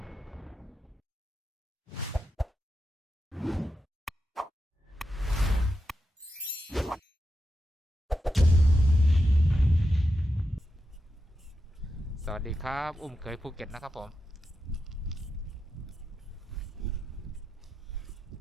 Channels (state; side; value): normal; both; correlation 0.88